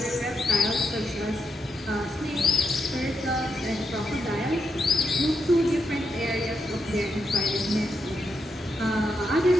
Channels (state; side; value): normal; both; correlation 0.82